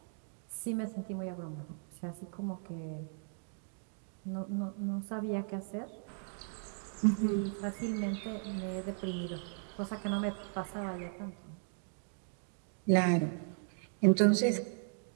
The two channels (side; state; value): left; silent; 53 dB below the other